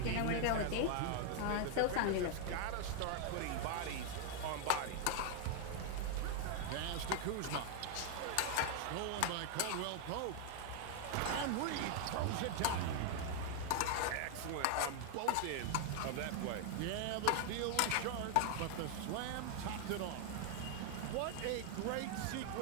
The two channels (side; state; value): both; different; correlation 0.00